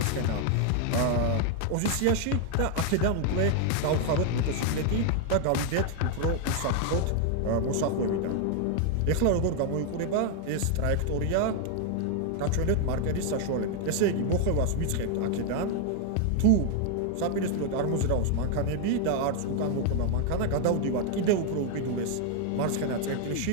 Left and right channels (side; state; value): both; different; correlation 0.00